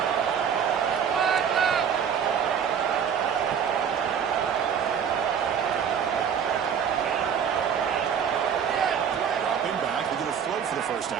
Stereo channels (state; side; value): quieter; left; 7.7 dB